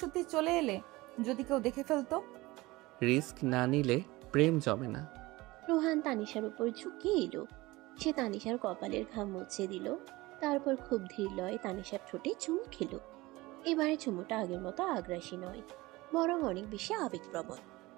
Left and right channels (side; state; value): left; quieter; 20.6 dB